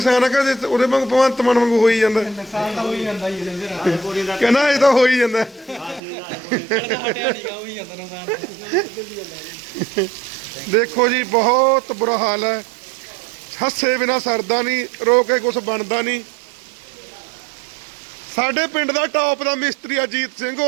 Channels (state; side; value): drops out; left; at 6.0 s